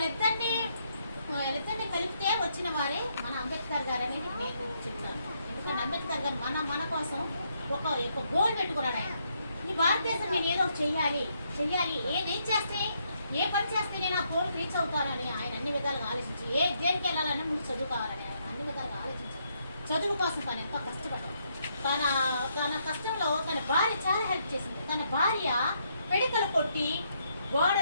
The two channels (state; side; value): inverted; both; correlation -0.75